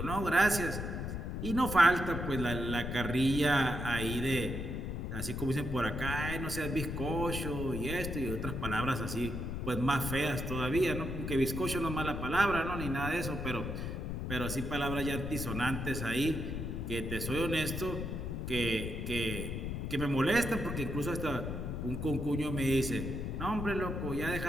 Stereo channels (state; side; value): noise; left; rumble, 4 dB below the sound